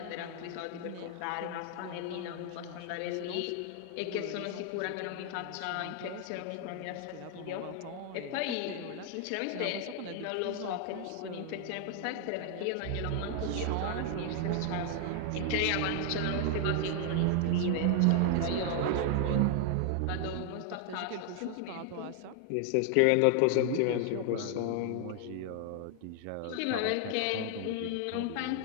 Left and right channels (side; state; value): both; different; correlation 0.00